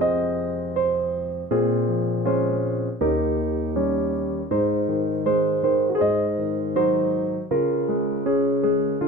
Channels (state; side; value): normal; both; correlation 0.48